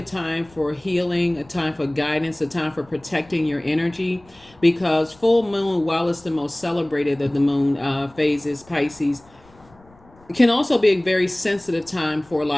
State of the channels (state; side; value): noise; left; rumble, 28 dB below the sound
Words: time for healing, a time for guidance, a time for protecting your energy, because full moon, while it's the most celebrated of the moon phases, Pisces, it can also be a very sensitive time for a